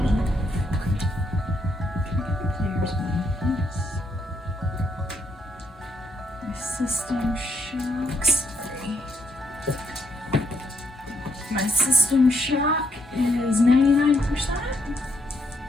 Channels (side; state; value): both; normal; correlation 0.75